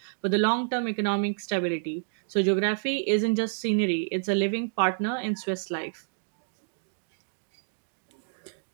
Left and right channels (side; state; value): left; silent; digital silence